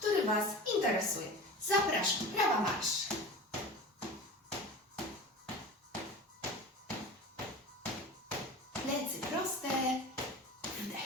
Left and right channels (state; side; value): normal; both; correlation 0.34